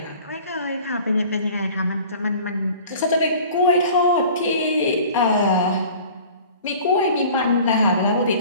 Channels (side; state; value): both; inverted; correlation -0.45